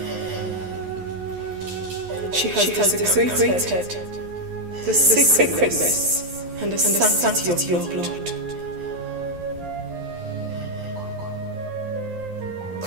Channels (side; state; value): left; late; 11 ms